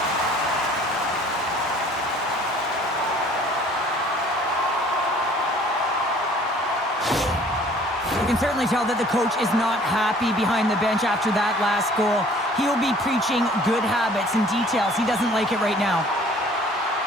You can certainly tell that the coach is not happy behind the bench after that last goal. He will be preaching good habits and details. He doesn't like it right now.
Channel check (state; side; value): normal; both; correlation 0.53